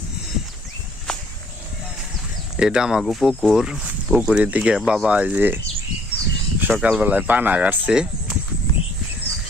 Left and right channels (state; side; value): normal; both; correlation 0.61